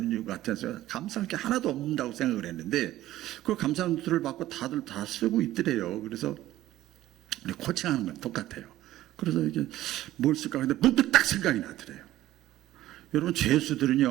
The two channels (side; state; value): left; quieter; 14.7 dB